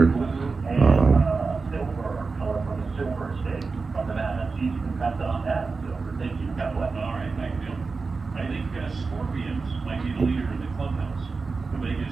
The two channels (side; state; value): left; quieter; 4.3 dB